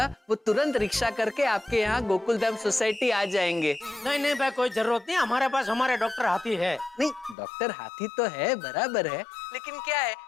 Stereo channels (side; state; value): right; drops out; at 7.4 s